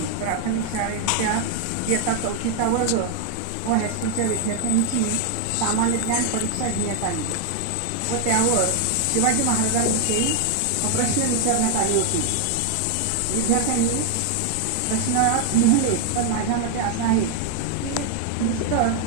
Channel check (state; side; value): different; both; correlation 0.00